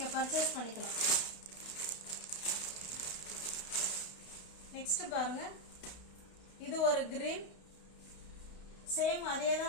பர்ச்சேஸ் பண்ணிக்கலாம். நெக்ஸ்ட் பாருங்க, இது ஒரு கிரீன். சேம் அதே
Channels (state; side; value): late; right; 32 ms